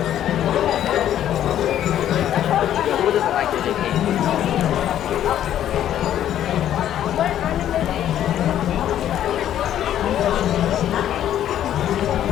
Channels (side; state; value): right; quieter; 11.2 dB